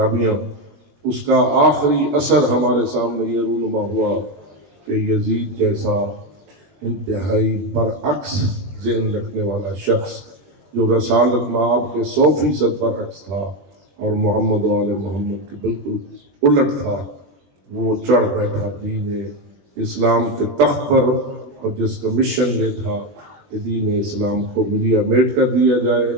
اس کا آخری اثر ہمارے سامنے یہ رونما ہوا کہ یزید جیسا انتہائی برعکس ذہن رکھنے والا شخص، جو رسالت مآب کے 100% برعکس تھا اور محمد و آل محمد کے بالکل الٹ تھا، وہ چڑھ بیٹھا دین اسلام کے تخت پر، اور جس کا مشن یہ تھا کہ دین اسلام کو ملیا میٹ کر دیا جائے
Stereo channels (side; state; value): left; late; 20 ms